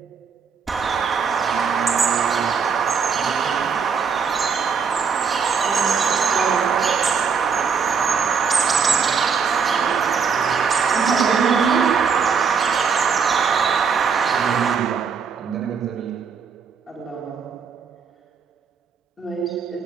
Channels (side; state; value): left; quieter; 6.0 dB